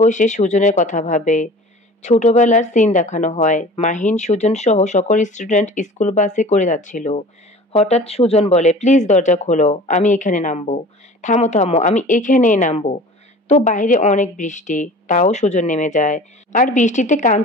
বসে সুজনের কথা ভাবে। ছোটবেলার সিন দেখানো হয়। মাহিন সুজন সহ সকল স্টুডেন্ট স্কুল বাসে করে যাচ্ছিল। হঠাৎ সুজন বলে, প্লিজ দরজা খোলো, আমি এখানে নামবো। থামো থামো, আমি এখানেই নামবো। তো বাইরে অনেক বৃষ্টি, তাও সুজন নেমে যায়। আর বৃষ্টিতে কান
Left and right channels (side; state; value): both; normal; correlation 0.42